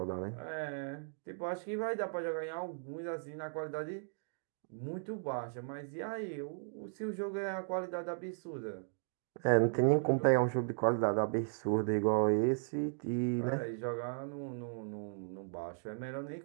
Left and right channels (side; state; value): left; silent; digital silence